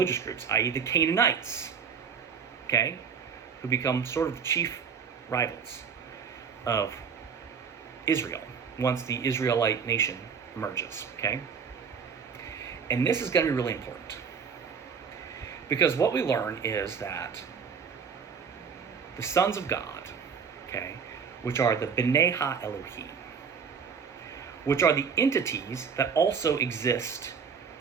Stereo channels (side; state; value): left; quieter; 6.4 dB